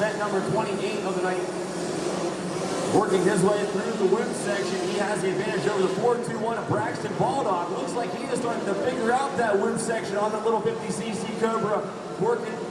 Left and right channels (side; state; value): both; identical; correlation 1.00